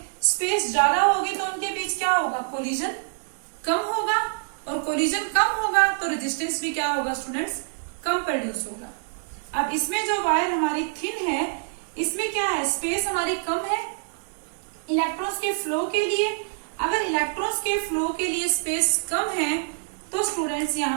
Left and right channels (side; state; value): left; silent; digital silence